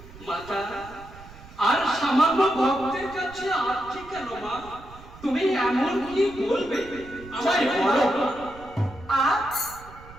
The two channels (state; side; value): noise; right; rumble, 19 dB below the sound